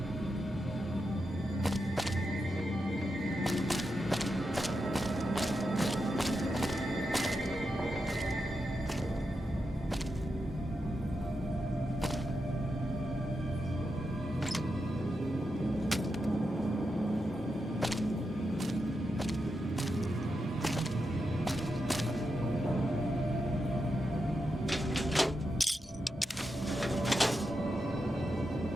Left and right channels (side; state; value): both; normal; correlation 0.87